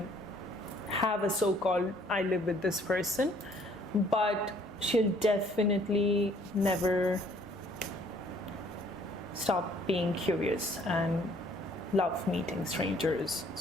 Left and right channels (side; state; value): left; noise; hum, 25 dB below the sound